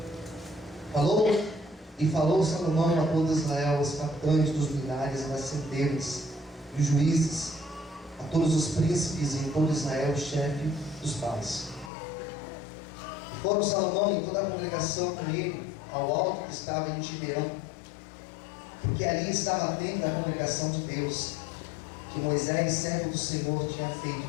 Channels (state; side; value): drops out; right; at 11.9 s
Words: Falou Salomão a todo Israel, os capitães dos milhares, as centenas, e os juízes, a todos os príncipes e em todo Israel, o chefe dos pais. E foram Salomão e toda a congregação com ele ao alto que estava em Gibeão, porque ali estava a tenda da congregação de Deus, que Moisés, servo do Senhor, tinha feito